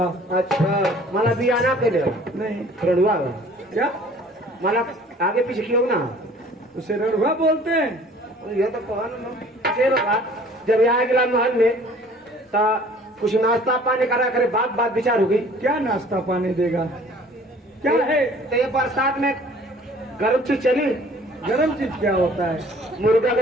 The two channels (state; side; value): normal; both; correlation 0.52